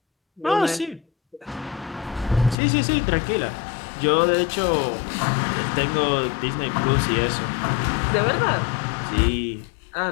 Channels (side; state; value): right; drops out; at 2.6 s